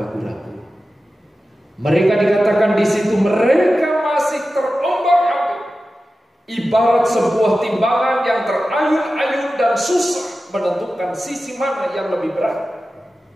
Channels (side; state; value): both; normal; correlation 0.94